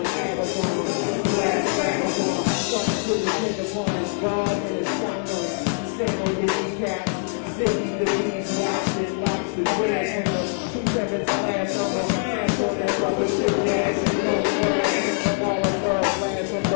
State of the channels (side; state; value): right; silent; 63 dB below the other